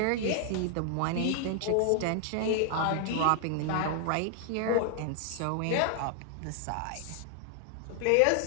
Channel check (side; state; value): both; different; correlation 0.00